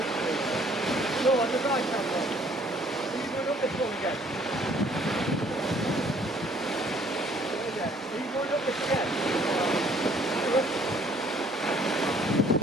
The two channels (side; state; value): both; normal; correlation 0.60